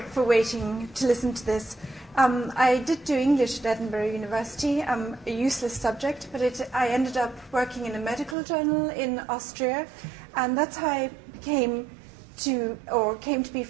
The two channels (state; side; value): drops out; left; at 8.3 s